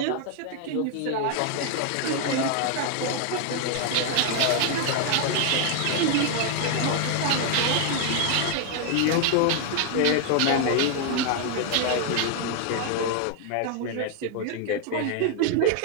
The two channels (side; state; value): both; different; correlation 0.00